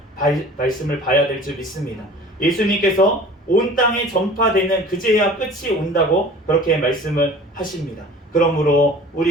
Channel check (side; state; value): both; normal; correlation 0.44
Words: 말씀을 봐야 될 줄 믿습니다. 예수님께서 온 땅에 전파되는 그제야 끝이 온다고 그렇게 말씀을 하십니다. 그러므로